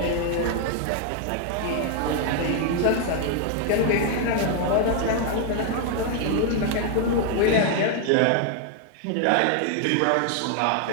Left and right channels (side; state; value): both; different; correlation 0.00